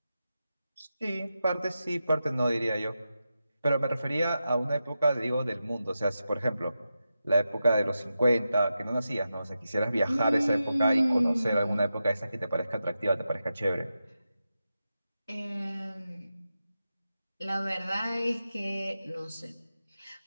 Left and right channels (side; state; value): both; inverted; correlation -0.90